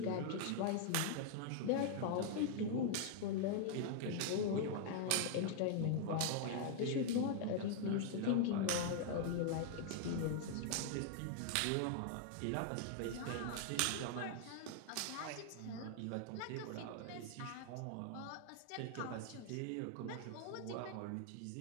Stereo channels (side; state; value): both; different; correlation 0.00